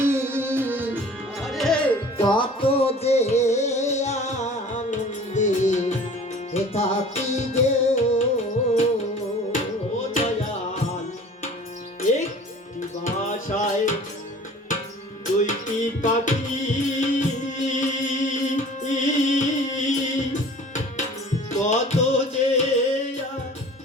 আরে কত যে আনন্দে থাকি গে। ও দয়াল, একটি বাসায় দুইটি পাখি, কত যে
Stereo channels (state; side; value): normal; both; correlation 0.45